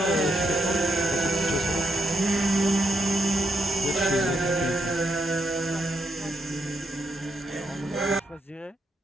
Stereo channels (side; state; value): both; normal; correlation 0.79